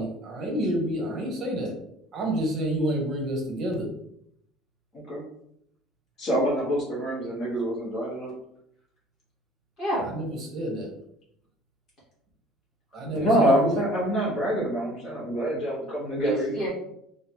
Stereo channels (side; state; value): both; normal; correlation 0.52